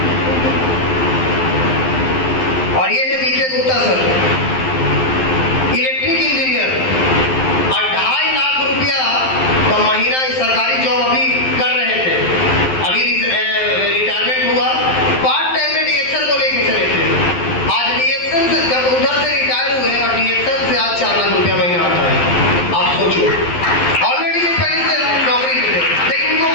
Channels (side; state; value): right; late; 12 ms